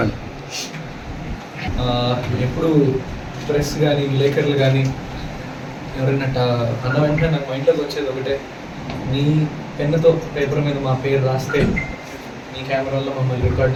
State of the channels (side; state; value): both; identical; correlation 1.00